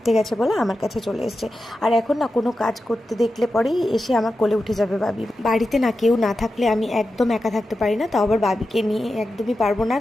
গেছে বলে আমার কাছে চলে এসছে। আর এখন না কোনো কাজ করতে দেখলে পরেই এসে আমার কোলে উঠে যাবে বাবি। বাড়িতে না কেউ না থাকলে আমি একদম একা থাকতে পারি না, তাও আবার বাবিকে নিয়ে একদমই পারবো না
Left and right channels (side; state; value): both; normal; correlation 0.91